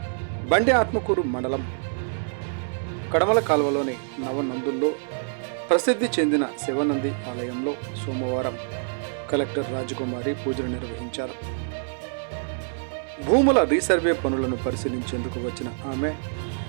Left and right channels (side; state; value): left; silent; 61 dB below the other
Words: బండి ఆత్మకూరు మండలం కడమల కాల్వలోని నవనందుల్లో ప్రసిద్ధి చెందిన శివనంది ఆలయంలో సోమవారం కలెక్టర్ రాజకుమారి పూజలు నిర్వహించారు. భూముల రీసర్వే పనులను పరిశీలించేందుకు వచ్చిన ఆమె